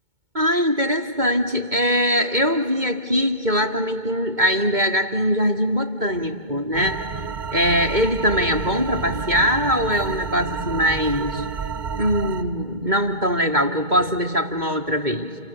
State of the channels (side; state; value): left; late; 2.2 ms